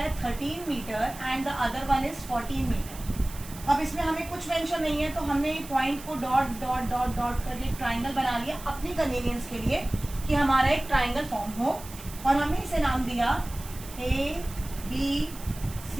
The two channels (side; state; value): right; noise; hiss, 15 dB below the sound